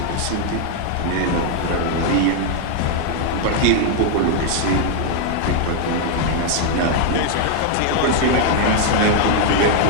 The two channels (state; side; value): different; both; correlation 0.00